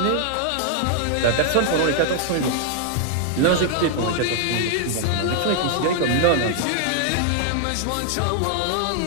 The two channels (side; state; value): both; different; correlation 0.00